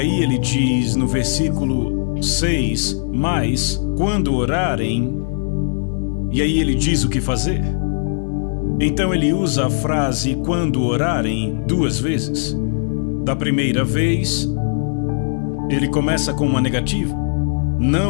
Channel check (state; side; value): silent; right; 56 dB below the other